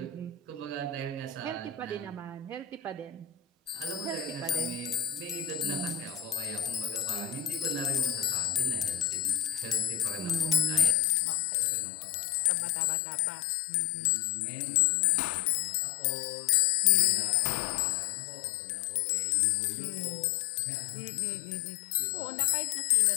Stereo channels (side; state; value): right; drops out; at 11.0 s